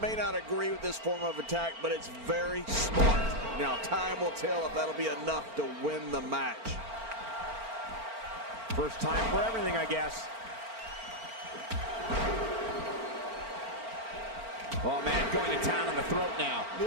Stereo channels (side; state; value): left; late; 4.4 ms